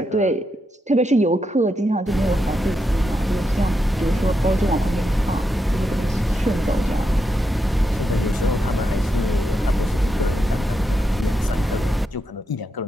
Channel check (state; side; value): normal; both; correlation 0.84